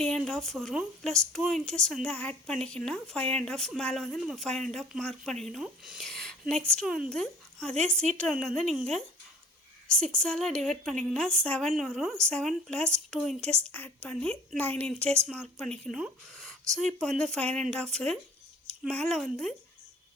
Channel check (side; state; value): both; normal; correlation 0.48